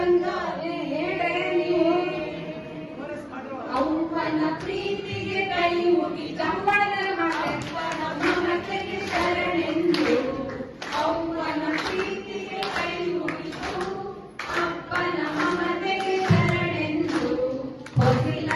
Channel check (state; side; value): identical; both; correlation 1.00